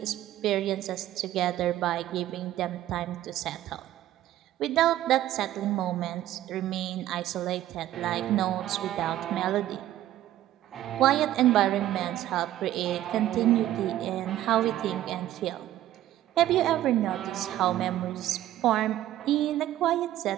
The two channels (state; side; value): quieter; left; 13.4 dB